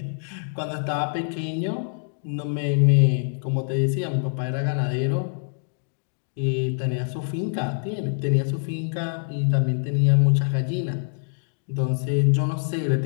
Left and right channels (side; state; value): right; silent; digital silence